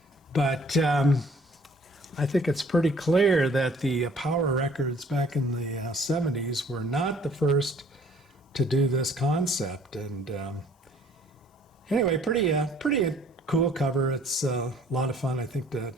But I think it's pretty clear that the power records back in the 70s were not the first to do this concept. And anyway, pretty cool cover. It's a lot of fun, I think,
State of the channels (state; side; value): normal; both; correlation 0.57